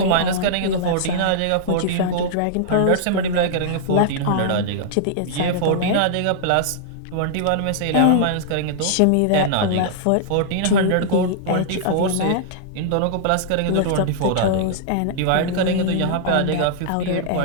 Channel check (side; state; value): both; different; correlation -0.02